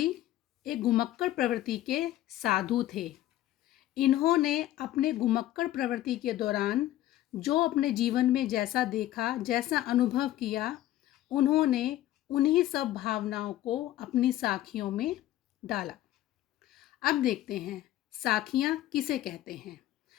एक घुमक्कड़ प्रवृत्ति के साधु थे। इन्होंने अपने घुमक्कड़ प्रवृत्ति के दौरान जो अपने जीवन में जैसा देखा, जैसा अनुभव किया, उन्होंने उन्हीं सब भावनाओं को अपनी साखियों में डाला। अब देखते हैं साखियाँ किसे कहते हैं।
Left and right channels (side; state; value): right; quieter; 14.1 dB